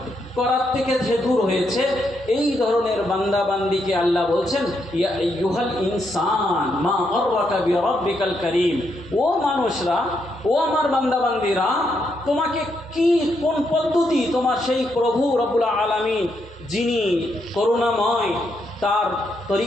করার থেকে যে দূর হয়েছে, এই ধরনের বান্দা বান্দিকে আল্লাহ বলছেন ইয়া আইয়ুহাল ইনসান মা গাররাকা বিরাব্বিকাল কারীম। ও মানুষরা, ও আমার বান্দা বান্দিরা, তোমাকে কোন পদ্ধতি তোমার সেই প্রভু রব্বুল আলামিন যিনি করুণাময় তার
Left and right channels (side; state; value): both; normal; correlation 0.79